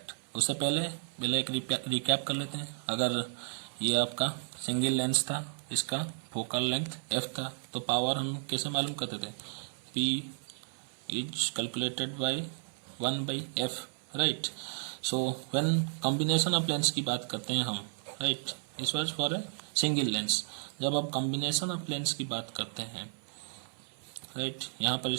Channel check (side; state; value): left; silent; 56 dB below the other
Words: उससे पहले एक recap कर लेते हैं. अगर ये आपका single lens था, इसका फोकल लेंथ f था, तो पावर हम कैसे मालूम करते थे? P is calculated by 1 by f, right? So when combination of lens की बात करते हैं हम, right, this was for a single lens. जब आप कॉम्बिनेशन ऑफ लेंस की बात करते हैं, राइट, यहाँ पर